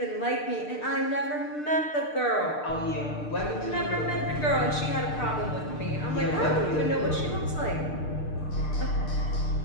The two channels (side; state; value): right; late; 6.7 ms